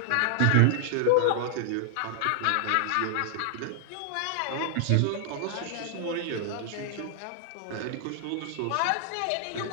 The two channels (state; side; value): different; both; correlation -0.01